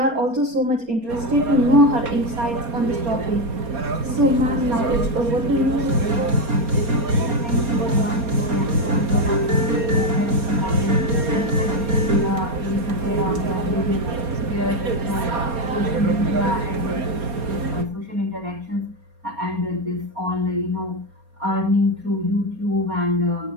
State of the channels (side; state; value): left; late; 4.3 ms